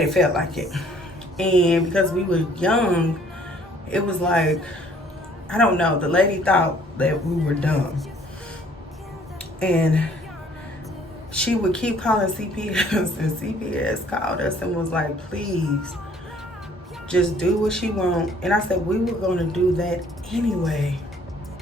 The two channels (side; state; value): both; normal; correlation 0.59